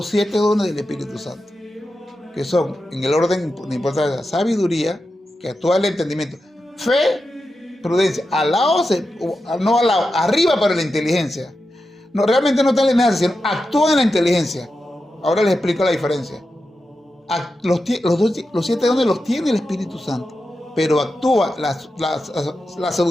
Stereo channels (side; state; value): both; normal; correlation 0.90